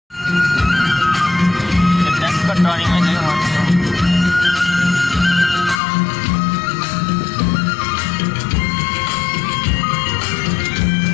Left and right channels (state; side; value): drops out; right; at 5.8 s